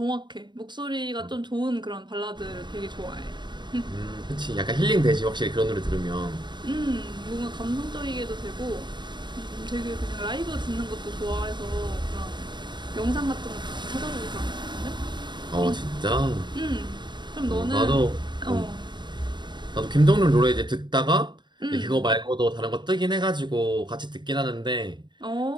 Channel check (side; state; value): left; late; 0.22 ms